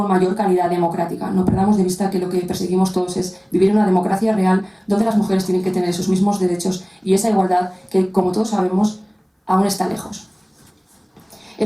mayor calidad democrática. No perdamos de vista que lo que perseguimos todos es vivir en una democracia real donde las mujeres tienen que tener esos mismos derechos y esa igualdad que, como todos sabemos, aún está lejos.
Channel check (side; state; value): both; identical; correlation 1.00